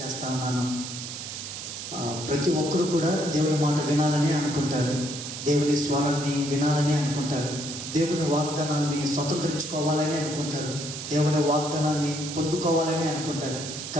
ఉన్నాను. ప్రతి ఒక్కరు కూడా దేవుని మాట వినాలని అనుకుంటారు, దేవుని స్వరాన్ని వినాలని అనుకుంటారు, దేవుని వాగ్దానాన్ని స్వతంత్రించుకోవాలని అనుకుంటారు, దేవుని వాగ్దానాన్ని పొందుకోవాలని అనుకుంటారు.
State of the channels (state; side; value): noise; right; hiss, 8 dB below the sound